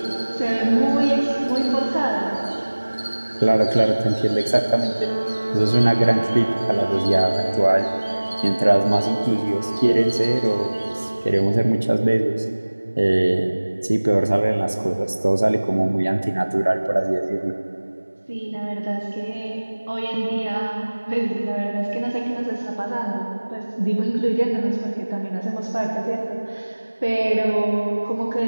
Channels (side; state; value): both; inverted; correlation -1.00